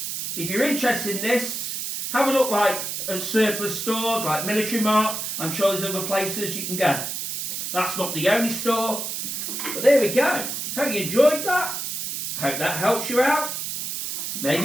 If you're interested in this, have a look at surplus stores like Military Mart. I'm sure there's other places you can go. That's not the only store. But there we go. Hope you enjoyed that. Hope that helps you out.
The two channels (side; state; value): right; noise; hiss, 4 dB below the sound